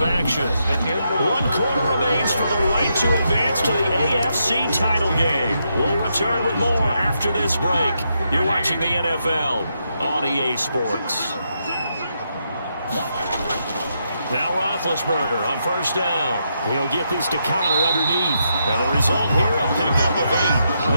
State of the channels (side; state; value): both; inverted; correlation -0.81